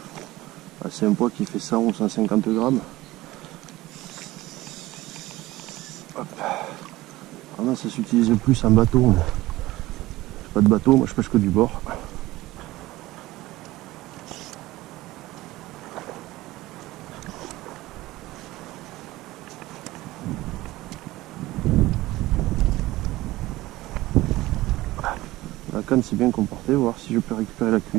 C'est un poids qui fait 100 ou 150 grammes. Hop. Alors là, ça s'utilise plus en bateau. J'ai pas de bateau, moi je pêche que du bord. La canne s'est bien comportée, voir si je peux récupérer la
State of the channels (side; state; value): left; quieter; 17.9 dB